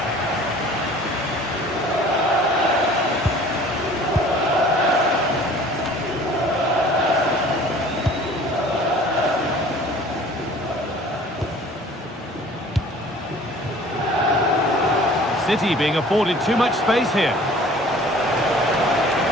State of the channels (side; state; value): both; normal; correlation 0.49